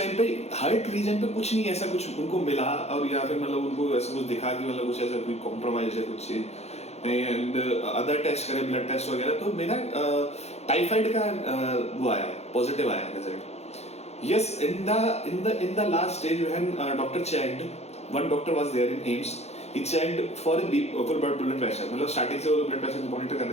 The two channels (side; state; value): right; late; 0.31 ms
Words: पे हार्ट रीजन पे कुछ नहीं ऐसा कुछ उनको मिला, और या फिर मतलब उनको ऐसा कुछ दिखा कि मतलब कुछ ऐसा कोई कॉम्प्रोमाइज है कुछ चीज, एंड अदर टेस्ट करे, ब्लड टेस्ट वगैरह, तो मेरा टाइफाइड का वो आया, पॉजिटिव आया result. Yes, in the last stage when doctor checked, one doctor was there in AIIMS, he checked for blood pressure. मतलब स्टार्टिंग से वो ब्लड प्रेशर मॉनिटर कर